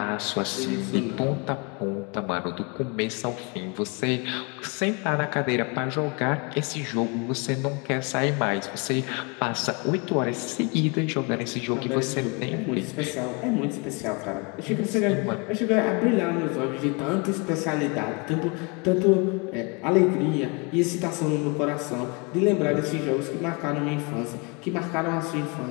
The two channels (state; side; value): quieter; right; 31.3 dB